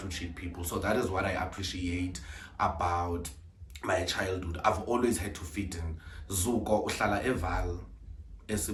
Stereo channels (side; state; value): both; identical; correlation 1.00